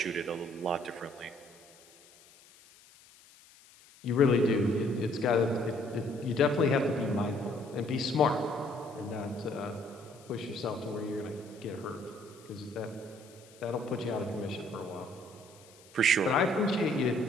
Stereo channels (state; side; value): noise; left; hiss, 25 dB below the sound